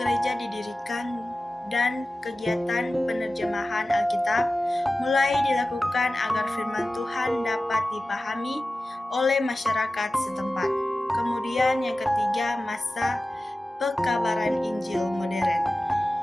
didirikan dan kegiatan penerjemahan Alkitab mulai dilakukan agar firman Tuhan dapat dipahami oleh masyarakat setempat. Kemudian yang ketiga, masa pekabaran Injil modern.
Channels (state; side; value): normal; both; correlation 0.95